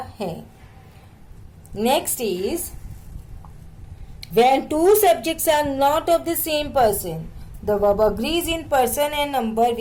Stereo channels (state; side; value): identical; both; correlation 1.00